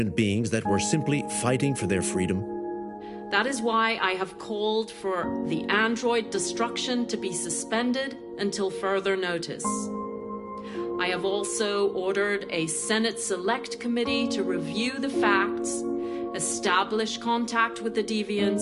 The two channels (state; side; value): identical; both; correlation 1.00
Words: beings that were simply fighting for their freedom? That is why I have called for the android destruction to be suspended until further notice. I have also ordered a Senate Select Committee to review the facts, establish contact with the